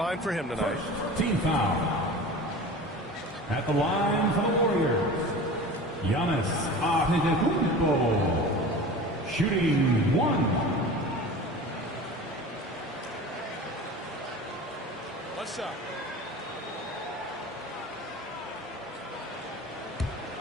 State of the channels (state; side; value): normal; both; correlation 0.36